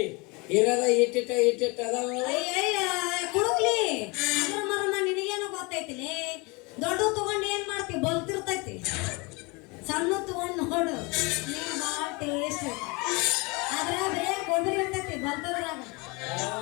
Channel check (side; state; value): right; quieter; 27.5 dB